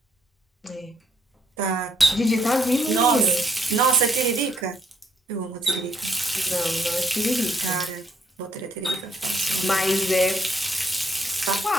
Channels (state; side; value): normal; both; correlation 0.71